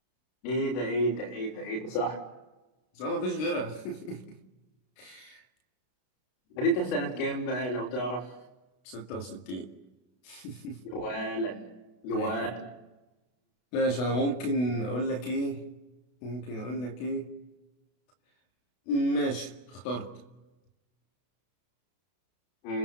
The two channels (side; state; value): right; late; 32 ms